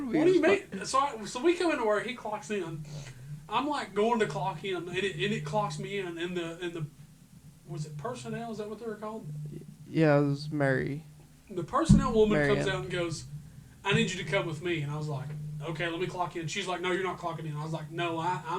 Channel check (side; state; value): both; identical; correlation 1.00